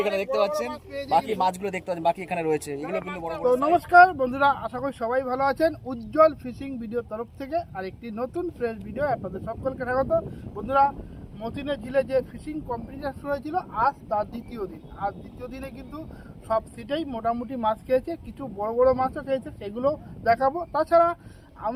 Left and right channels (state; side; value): identical; both; correlation 1.00